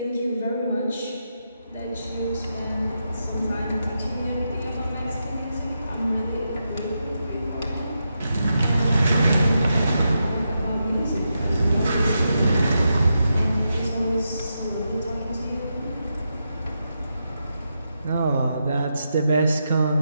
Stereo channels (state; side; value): inverted; both; correlation -0.85